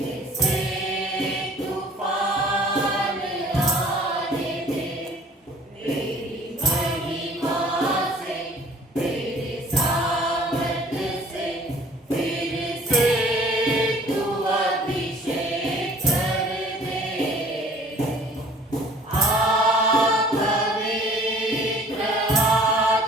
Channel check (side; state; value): both; normal; correlation 0.52